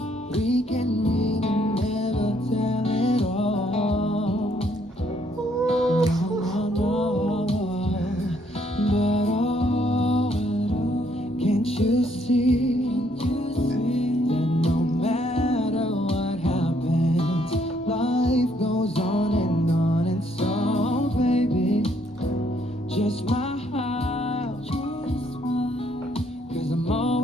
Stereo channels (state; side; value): normal; both; correlation 0.69